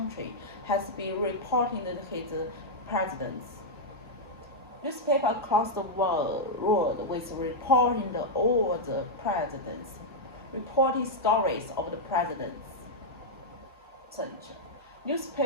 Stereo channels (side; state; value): both; normal; correlation -0.04